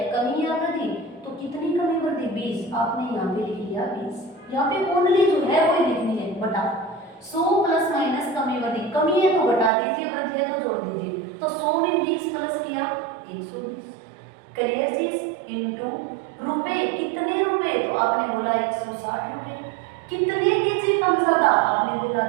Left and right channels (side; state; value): left; drops out; at 9.7 s